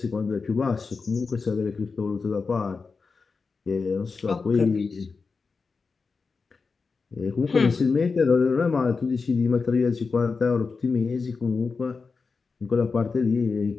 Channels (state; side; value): quieter; right; 4.7 dB